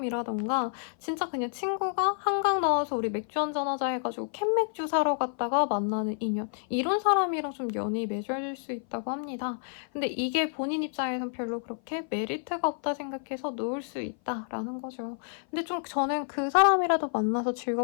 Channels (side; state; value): right; silent; 55 dB below the other